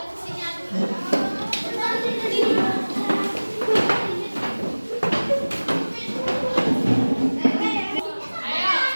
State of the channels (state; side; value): inverted; both; correlation -1.00